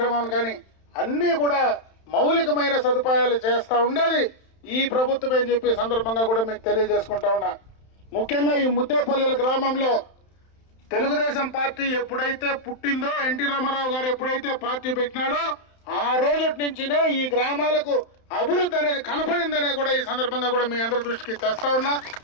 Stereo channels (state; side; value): late; right; 31 ms